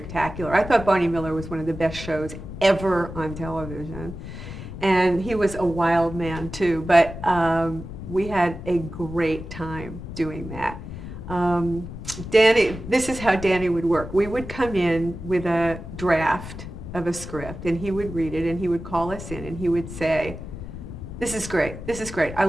I thought Barney Miller was one of the best shows ever on television. And he was a wild man too, but we had a great time doing that. Danny, this is how Danny would work. We would come in with a draft of a script, and he would read it, and he would call us in, and he would say, this is great, I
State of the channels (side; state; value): left; noise; rumble, 10 dB below the sound